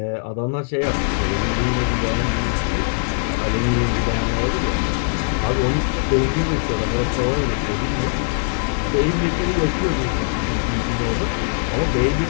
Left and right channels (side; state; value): right; silent; 60 dB below the other